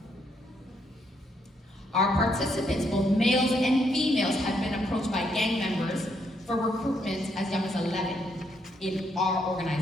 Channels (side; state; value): both; normal; correlation 0.75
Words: Our participants, both males and females, have been approached by gang members for recruitment as young as 11 in our